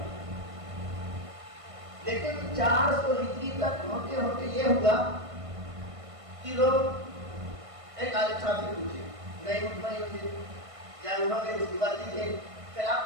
لیکن 400 ہجری تک ہوتے ہوتے یہ ہوا کہ لوگ ایک عالم صاحب سے پوچھے، نہیں مطمئن ہوتے یا انہوں نے اس کی بات نہیں تھی، پھر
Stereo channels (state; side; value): late; left; 1.5 ms